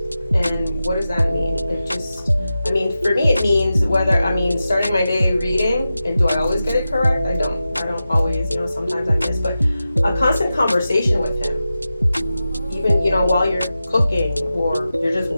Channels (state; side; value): inverted; both; correlation -0.93